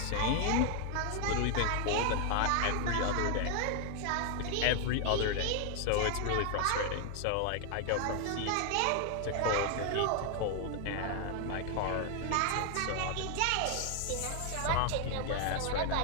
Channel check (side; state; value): both; different; correlation 0.00